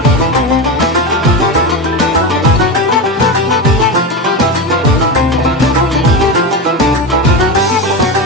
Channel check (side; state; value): both; normal; correlation 0.20